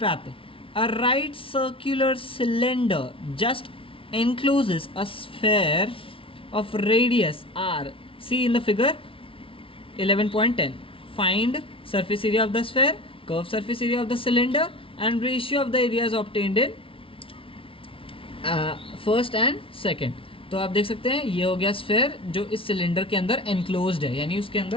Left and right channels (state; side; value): late; right; 0.26 ms